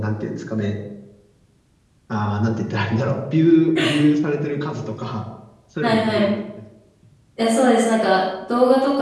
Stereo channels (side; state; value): both; identical; correlation 1.00